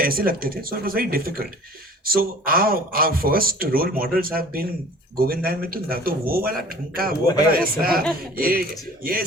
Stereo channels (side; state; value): both; normal; correlation 0.47